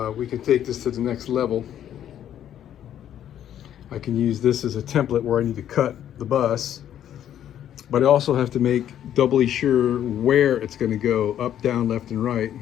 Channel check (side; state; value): right; quieter; 10.6 dB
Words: we can take this to the next level. I can use this as a template where I need to cut the bus, but I also have to make doubly sure where it's going to go, up, down, left, and right,